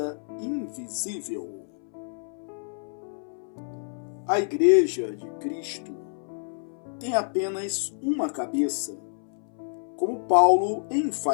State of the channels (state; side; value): silent; right; 59 dB below the other